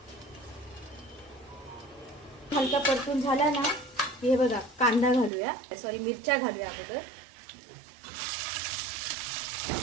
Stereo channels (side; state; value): left; drops out; at 5.3 s